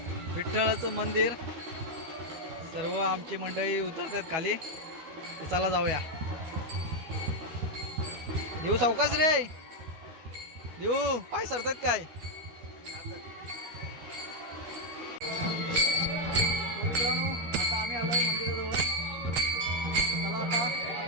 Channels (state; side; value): late; left; 12 ms